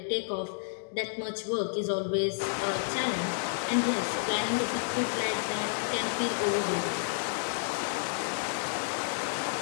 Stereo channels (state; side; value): silent; right; digital silence